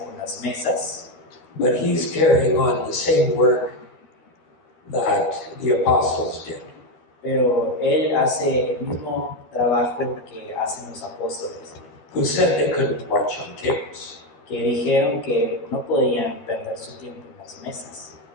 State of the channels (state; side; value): late; right; 13 ms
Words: con las mesas, but he's carrying on the same work that the apostles did. pero él hace el mismo trabajo que hacen los apóstoles, Who said they couldn't watch on tables. que dijeron que no podían perder su tiempo en las mesas.